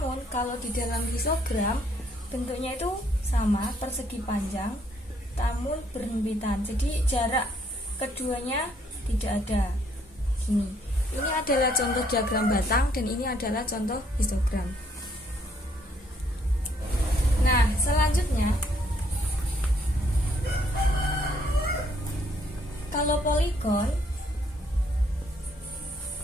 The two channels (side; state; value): both; normal; correlation 0.68